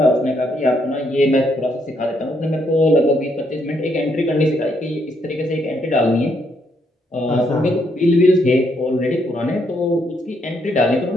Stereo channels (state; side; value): normal; both; correlation 0.74